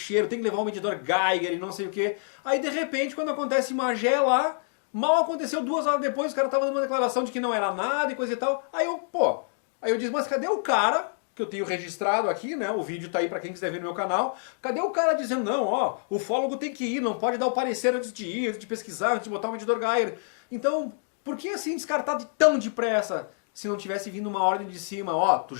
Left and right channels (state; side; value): silent; right; digital silence